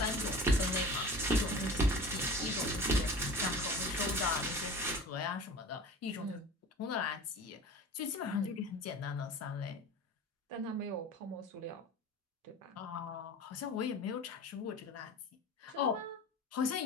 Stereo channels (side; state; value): both; normal; correlation 0.38